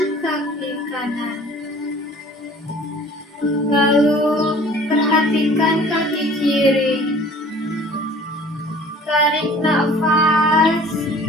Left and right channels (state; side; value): normal; both; correlation 0.49